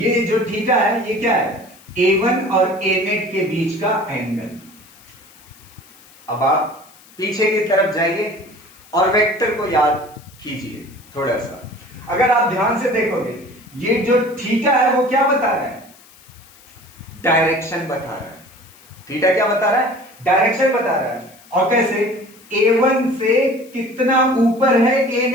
जो थीटा है ये क्या है? a1 और a नेट के बीच का एंगल। अब आप पीछे की तरफ जाइए और वेक्टर को याद कीजिए थोड़ा सा। अगर आप ध्यान से देखोगे ये जो थीटा है वो क्या बता रहा है? डायरेक्शन बता रहा है। थीटा क्या बता रहा है? डायरेक्शन बता रहा है। और कैसे? a1 से कितना ऊपर है a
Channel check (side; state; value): left; noise; hiss, 25 dB below the sound